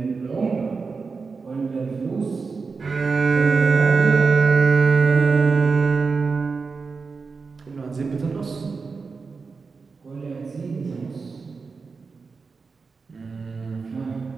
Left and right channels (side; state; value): left; quieter; 4.7 dB